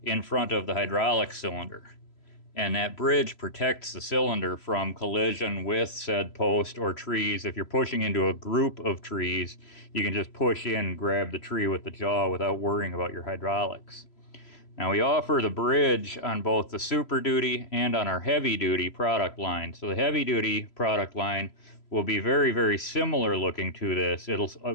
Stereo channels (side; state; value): right; late; 3.0 ms